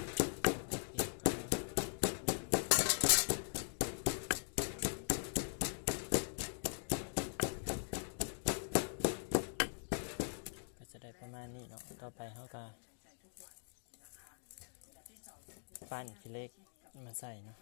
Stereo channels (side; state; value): right; silent; digital silence